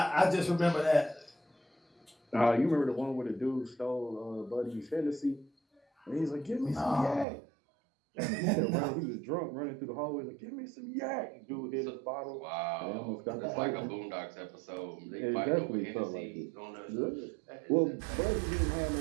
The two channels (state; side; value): drops out; left; at 7.2 s